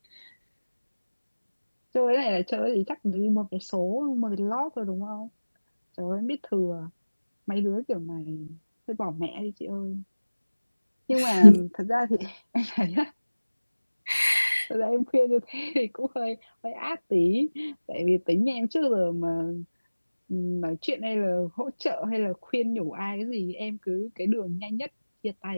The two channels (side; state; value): both; inverted; correlation -1.00